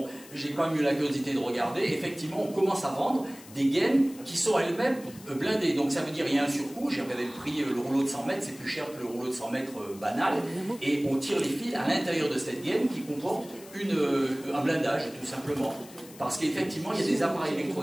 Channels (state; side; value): noise; left; hiss, 20 dB below the sound